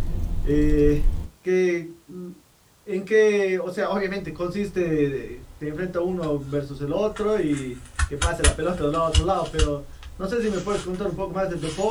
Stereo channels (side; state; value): both; identical; correlation 1.00